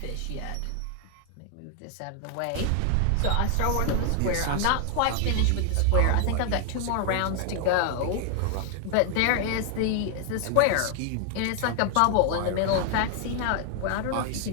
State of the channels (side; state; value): both; different; correlation 0.00